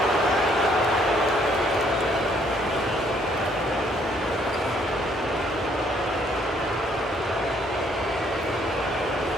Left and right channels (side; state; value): both; normal; correlation 0.66